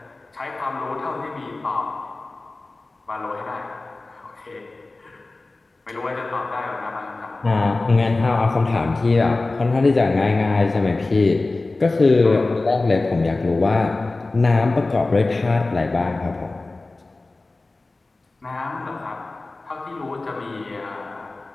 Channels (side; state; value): right; quieter; 3.2 dB